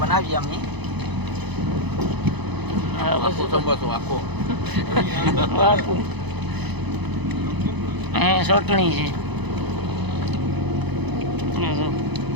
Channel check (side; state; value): left; late; 0.99 ms